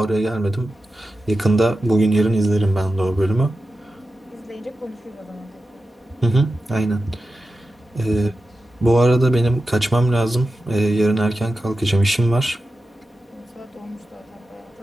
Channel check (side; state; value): both; normal; correlation 0.92